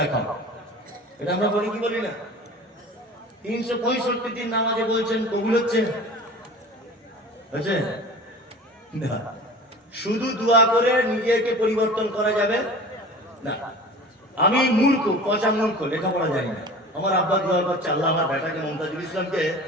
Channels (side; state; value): both; normal; correlation 0.39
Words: এটা আমরা বলি কি বলি না? 365 দিন নামাজে বলছেন, কবুল হচ্ছে? হচ্ছে না। শুধু দোয়া করে নিজেকে পরিবর্তন করা যাবে না। আমি মূর্খ, পচা মূর্খ, লেখাপড়া জানি না। আমার আব্বা দোয়া করছে, আল্লাহ আমার বেটাকে মমতাজুল ইসলামকে